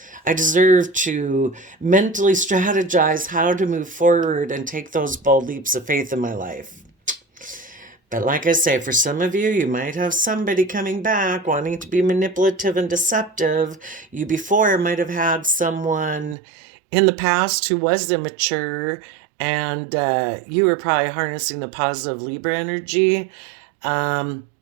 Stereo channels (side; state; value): left; drops out; at 16.4 s